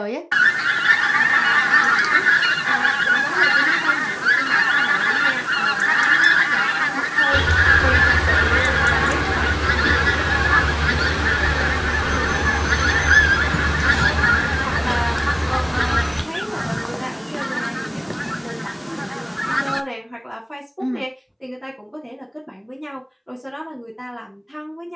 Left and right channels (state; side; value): identical; both; correlation 1.00